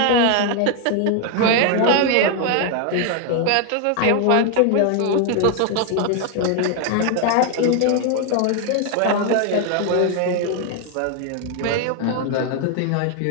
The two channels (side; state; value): both; different; correlation 0.01